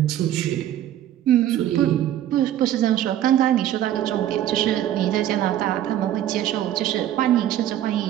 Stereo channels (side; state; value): left; quieter; 11.9 dB